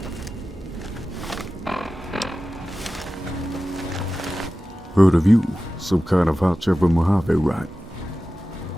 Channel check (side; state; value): both; normal; correlation 0.95